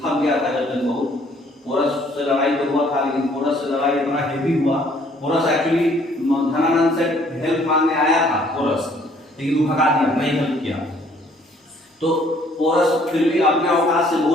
थक गया था जब तक बहुत। पोरस से लड़ाई तो हुआ था, लेकिन पोरस से लड़ाई इतना हेवी हुआ। पोरस एक्चुअली धनानंद से हेल्प मांगने आया था पोरस, लेकिन वो भगा दिया, नहीं हेल्प किया। तो पोरस फिर भी अपने औकात से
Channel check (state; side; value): normal; both; correlation 0.61